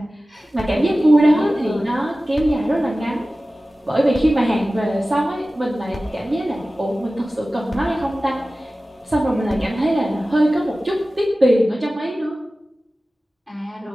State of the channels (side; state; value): both; normal; correlation 0.96